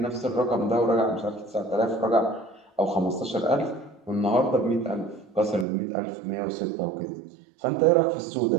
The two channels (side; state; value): left; drops out; at 5.7 s